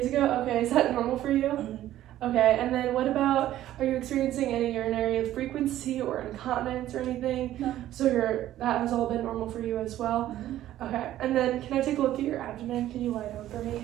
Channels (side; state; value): left; quieter; 13.3 dB